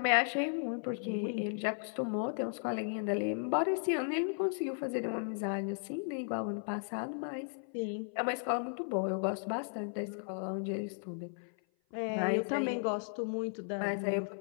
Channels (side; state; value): right; silent; 54 dB below the other